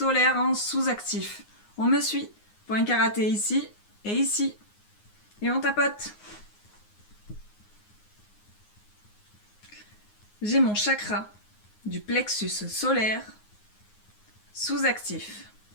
en sous-actif. On me suit. Point karaté ici et ici. Et on tapote. J'ai mon chakra du plexus solaire sous-actif.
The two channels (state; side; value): late; right; 9.6 ms